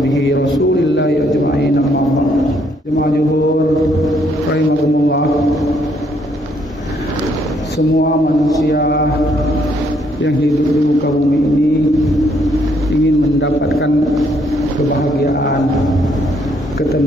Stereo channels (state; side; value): normal; both; correlation 0.70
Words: rasulillahi ajma'in. Jemaah zuhur rahimakumullah. Semua manusia yang hidup di muka bumi ini ingin mendapatkan kebahagiaan,